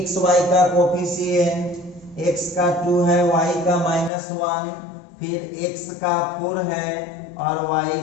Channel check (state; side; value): drops out; right; at 4.1 s